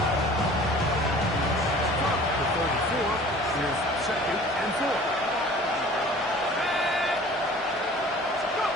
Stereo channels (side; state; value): both; normal; correlation 0.47